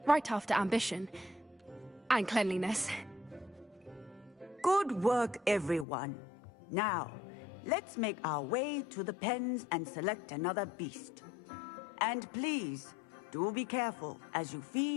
right after ambition. And cleanliness. Good work, everyone. Now, let's make our way to the pens and select another beast. And please, do be careful as you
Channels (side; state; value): right; drops out; at 5.9 s